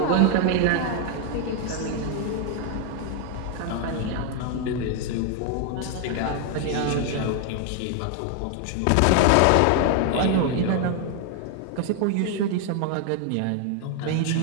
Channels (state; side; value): different; both; correlation 0.01